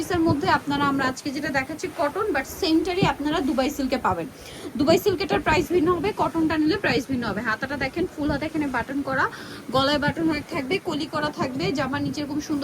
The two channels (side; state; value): both; identical; correlation 1.00